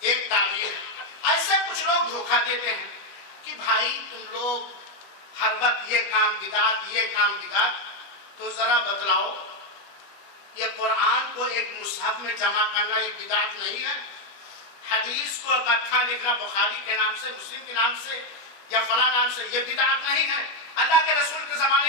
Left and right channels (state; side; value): late; right; 21 ms